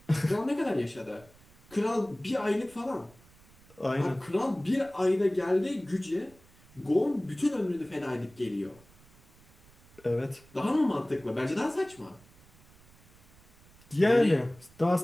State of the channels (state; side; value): noise; right; rumble, 27 dB below the sound